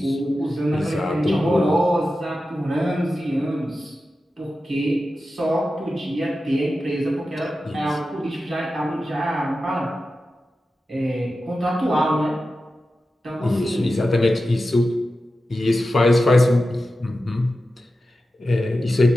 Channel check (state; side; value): normal; both; correlation 0.92